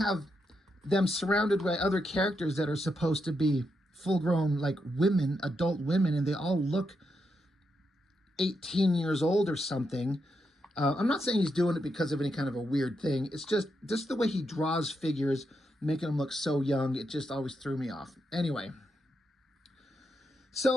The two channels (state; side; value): normal; both; correlation 0.83